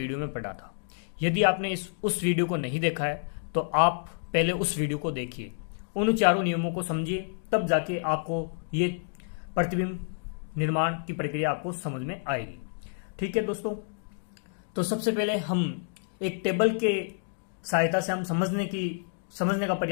में पढ़ा था। यदि आपने उस वीडियो को नहीं देखा है तो आप पहले उस वीडियो को देखिए, उन चारों नियमों को समझिए, तब जाके आपको ये प्रतिबिंब निर्माण की प्रक्रिया आपको समझ में आएगी। ठीक है दोस्तों, तो सबसे पहले हम एक टेबल के सहायता से हम समझने का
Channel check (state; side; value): silent; right; digital silence